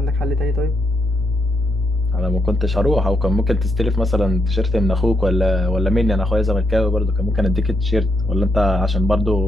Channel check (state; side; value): normal; both; correlation 0.79